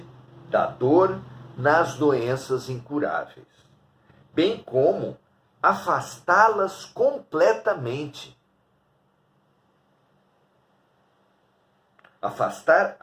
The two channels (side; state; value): both; identical; correlation 1.00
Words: da dor nas doenças incuráveis, bem como afastá-las completamente. Afastar